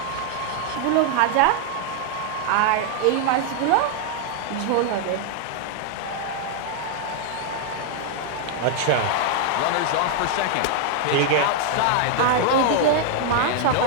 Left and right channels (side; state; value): both; different; correlation 0.00